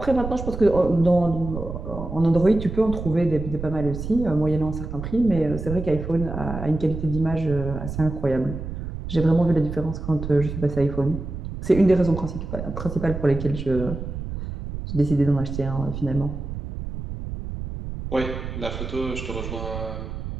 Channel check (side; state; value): right; noise; rumble, 7 dB below the sound